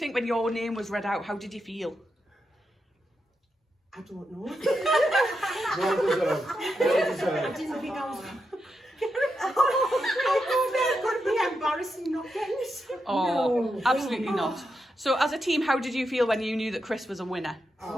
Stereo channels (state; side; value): normal; both; correlation 0.86